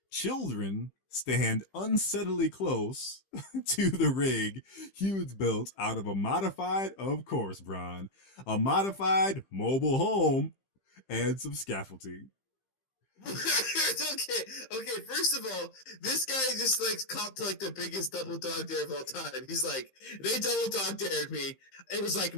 Children stand unsettlingly close to the rig Hughes built out of a modified, of course, Bron, a modified mobile home and some scaffolding. okay. First of all, this guy just like copped to like the biggest double dog dare of all time. He's like, they double dog dared me. It was like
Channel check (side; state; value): right; late; 15 ms